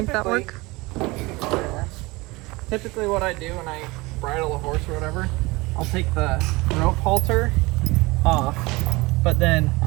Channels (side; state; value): left; quieter; 23.1 dB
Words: that work. Typically what I do when I bridle a horse or whatever, I'll take the rope halter off, but then